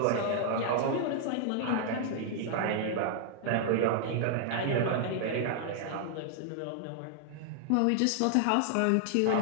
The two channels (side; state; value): both; different; correlation 0.00